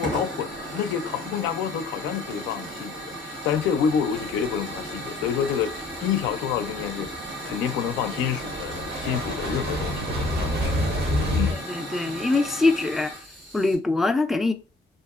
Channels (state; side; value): quieter; right; 3.7 dB